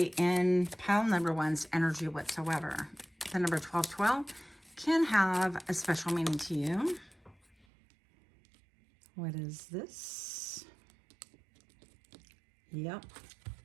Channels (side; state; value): left; drops out; at 7.7 s